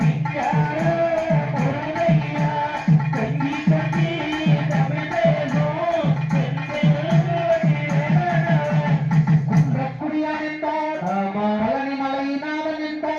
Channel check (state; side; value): identical; both; correlation 1.00